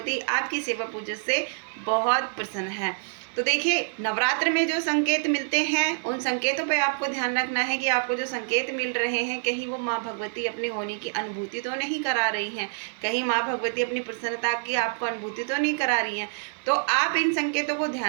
आपकी सेवा पूजा से बहुत प्रसन्न है? तो देखिए, नवरात्र में जो संकेत मिलते हैं उन संकेतों पे आपको ध्यान रखना है कि आपको जो संकेत मिल रहे हैं, कहीं वो माँ भगवती अपने होने की अनुभूति तो नहीं करा रही हैं, कहीं माँ भगवती अपनी प्रसन्नता की आपको अनुभूति तो नहीं करा रही हैं। तो आप इन संकेतों को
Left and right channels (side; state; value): left; silent; 58 dB below the other